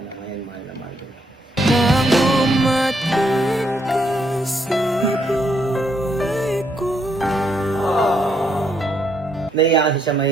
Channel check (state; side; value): normal; both; correlation 0.75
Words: na ngayon, mahal na mahal ko. Naiya kasi siya,